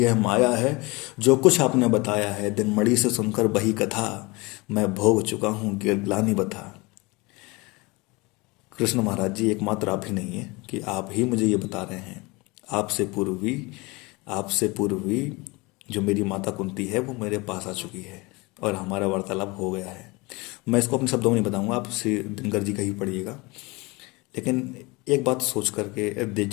माया है जो कुछ आपने बताया है, दिन मणि से सुनकर बही कथा, मैं भोग चुका हूँ ग्लानि बता। कृष्ण महाराज जी एकमात्र आप ही नहीं है कि आप ही मुझे ये बता रहे हैं। आपसे पूर्वी जो मेरी माता कुंती है वो मेरे पास आ चुकी है और हमारा वार्तालाप हो गया है। मैं इसको अपने शब्दों में नहीं बताऊंगा, आप श्री दिनकर जी का ही पढ़िएगा, लेकिन एक बात सोच करके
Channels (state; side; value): quieter; right; 25.0 dB